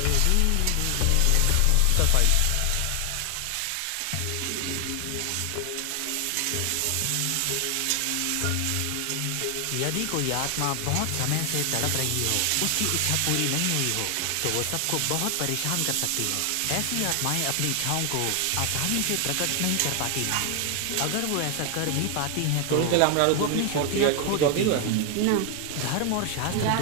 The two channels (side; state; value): both; different; correlation 0.00